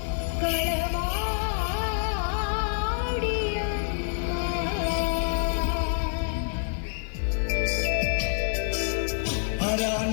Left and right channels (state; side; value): silent; right; digital silence